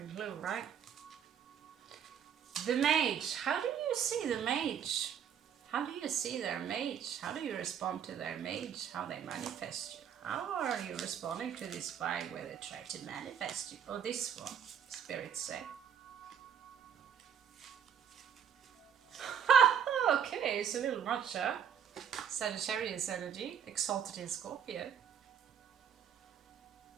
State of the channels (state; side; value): quieter; left; 8.3 dB